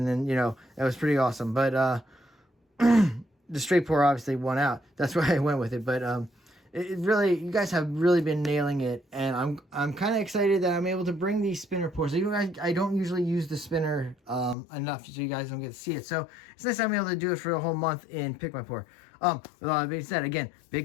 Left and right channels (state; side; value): drops out; right; at 14.6 s